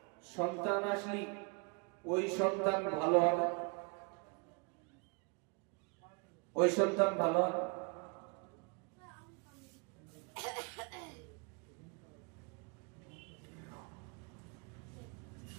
সন্তান আসলি ওই সন্তান ভালো হবে? ওই সন্তান ভালো হবে?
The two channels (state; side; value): quieter; left; 33.2 dB